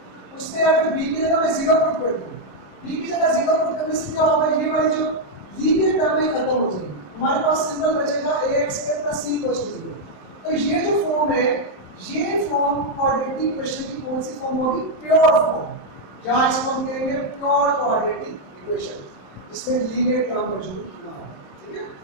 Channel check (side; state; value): right; late; 27 ms